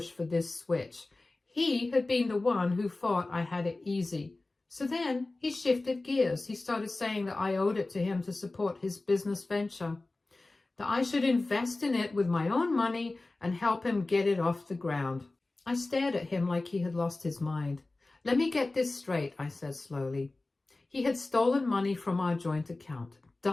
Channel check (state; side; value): quieter; right; 3.1 dB